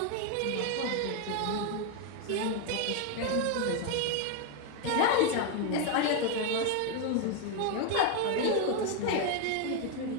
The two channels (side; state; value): both; different; correlation 0.01